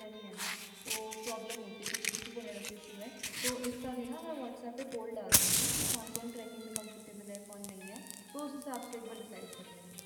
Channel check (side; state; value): both; identical; correlation 1.00